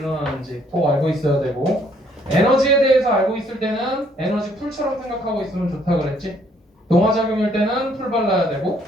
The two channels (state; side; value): normal; both; correlation 0.66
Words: 꼭 알고 있어야 되고 에너지에 대해서 알고 있을 때는 에너지 풀처럼 생각하고 있으면 좋다 그랬지. 동화작용일 때는 풀 발라야 되고